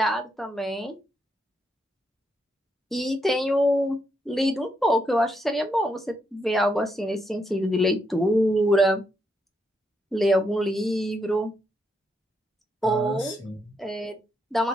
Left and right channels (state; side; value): normal; both; correlation 0.80